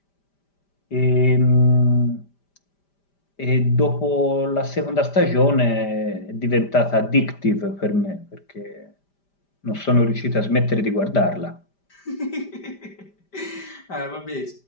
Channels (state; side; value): late; right; 5.1 ms